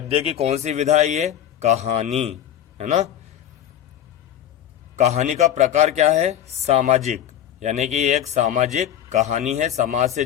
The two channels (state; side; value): quieter; right; 10.6 dB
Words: की कौन सी विधा है ये? कहानी, है ना। कहानी का प्रकार क्या है? सामाजिक, यानी कि एक सामाजिक कहानी है, समाज से